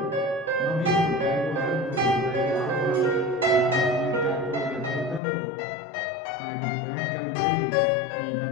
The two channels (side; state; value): right; drops out; at 5.2 s